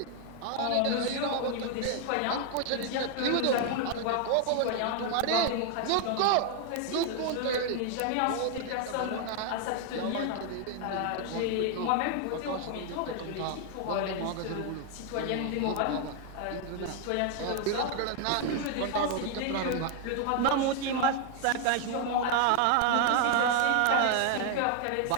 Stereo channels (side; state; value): both; different; correlation 0.00